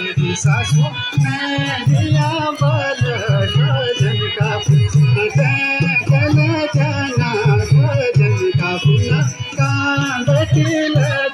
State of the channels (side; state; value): both; identical; correlation 1.00